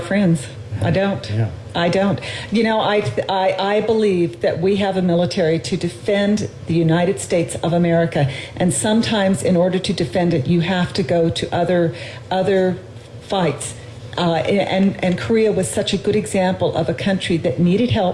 friends. I don't. Yeah. I don't. You know, I believe that we have a military to defend the United States of America, and sometimes in order to defend it, you have to go to other fights. And Korea was such a good example of a country that needed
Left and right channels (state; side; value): identical; both; correlation 1.00